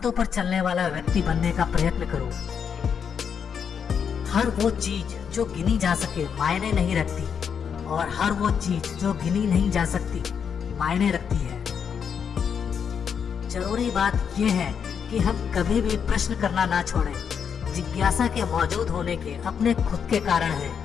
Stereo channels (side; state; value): right; quieter; 7.1 dB